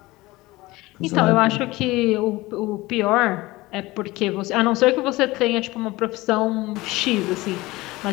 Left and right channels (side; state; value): right; quieter; 20.1 dB